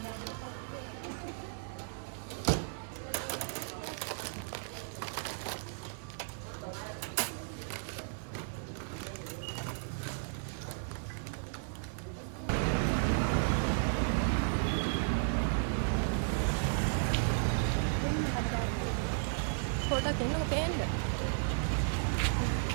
පොඩක් එන්නකො පේන්න.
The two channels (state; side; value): silent; left; digital silence